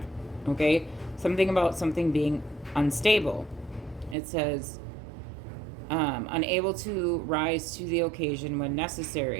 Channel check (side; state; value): left; drops out; at 4.2 s